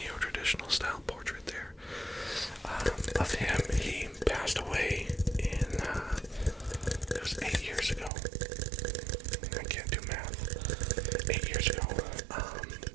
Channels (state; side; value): drops out; left; at 8.1 s